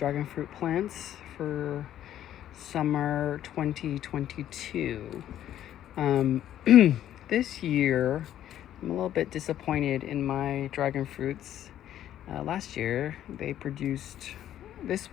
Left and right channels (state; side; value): quieter; right; 11.6 dB